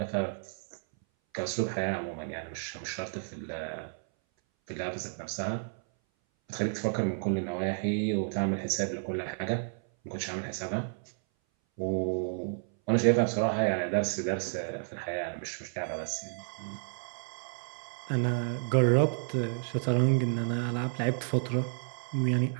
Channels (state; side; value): silent; left; 57 dB below the other